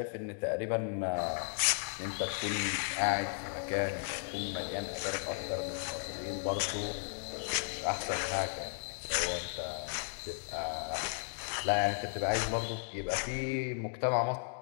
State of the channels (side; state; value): right; silent; 54 dB below the other